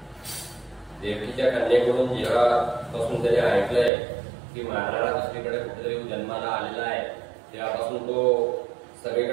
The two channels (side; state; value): left; drops out; at 3.9 s